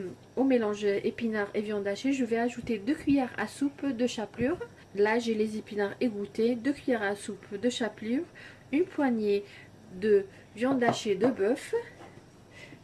au mélange épinards et viande hachée, je vais ajouter 2 cuillères à soupe de chapelure. Là j'ai les épinards égouttés, 2 cuillères à soupe de chapelure, une poignée de viande hachée de bœuf.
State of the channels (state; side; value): identical; both; correlation 1.00